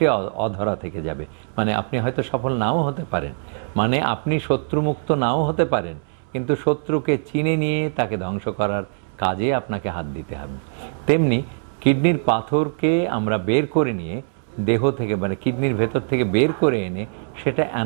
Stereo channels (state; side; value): silent; left; 64 dB below the other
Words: অধরা থেকে যাবে, মানে আপনি হয়তো সফল নাও হতে পারেন, মানে আপনি শত্রুমুক্ত নাও হতে পারেন, কিন্তু শত্রুকে চিনে নিয়ে তাকে ধ্বংস করার কাজে আপনাকে হাত দিতে হবে। তেমনি কিডনির পাথরকে আমরা বের করে নিয়ে দেহ থেকে, মানে কিডনির ভেতর থেকে বের করে এনে সেটা